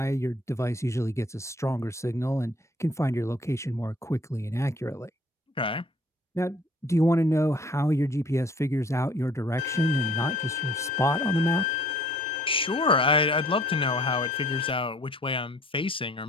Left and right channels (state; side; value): normal; both; correlation 0.55